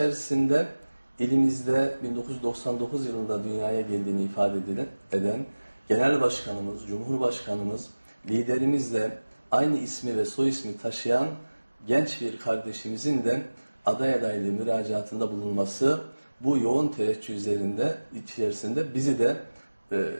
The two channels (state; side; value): inverted; both; correlation -1.00